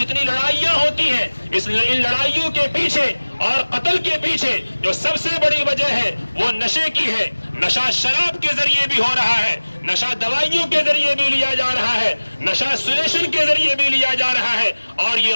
لڑائیاں ہوتی ہیں، ان لڑائیوں کے پیچھے اور قتل کے پیچھے جو سب سے بڑی وجہ ہے وہ نشے کی ہے۔ نشہ شراب کے ذریعے بھی ہو رہا ہے، نشہ دوائیوں کے ذریعے بھی لیا جا رہا ہے، نشہ سلیشن کے ذریعے بھی لیا جا رہا ہے، اور یہ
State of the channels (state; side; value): inverted; both; correlation -1.00